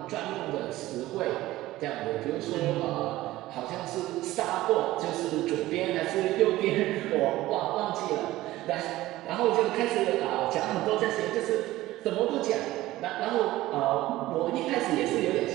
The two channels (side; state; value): left; quieter; 16.6 dB